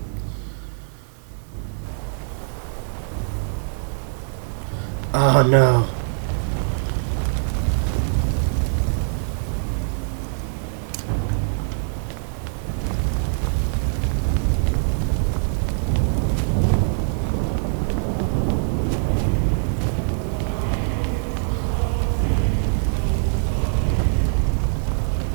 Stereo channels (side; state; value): left; silent; 63 dB below the other